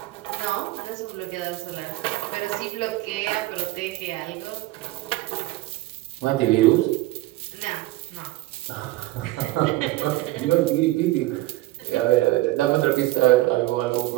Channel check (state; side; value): quieter; left; 18.2 dB